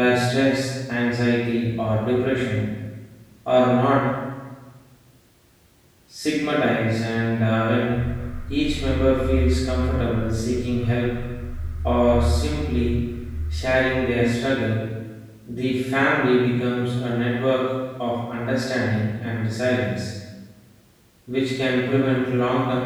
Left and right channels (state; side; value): identical; both; correlation 1.00